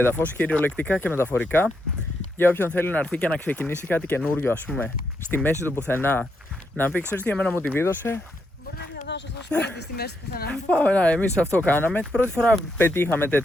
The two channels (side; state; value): both; normal; correlation 0.80